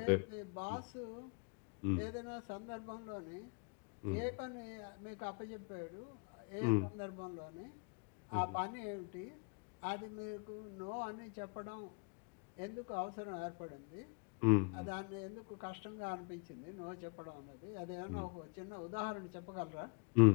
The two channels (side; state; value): right; quieter; 37.1 dB